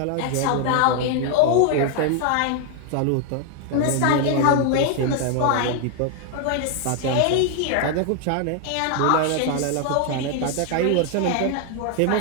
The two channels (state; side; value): different; both; correlation 0.01